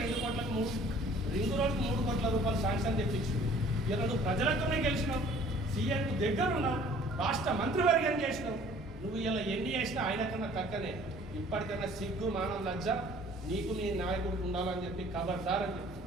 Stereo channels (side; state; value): both; normal; correlation 0.53